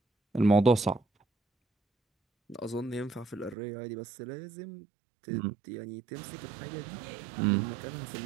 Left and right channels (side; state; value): left; drops out; at 3.6 s